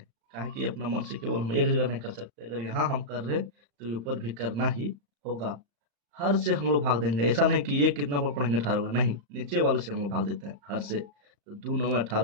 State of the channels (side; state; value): left; late; 35 ms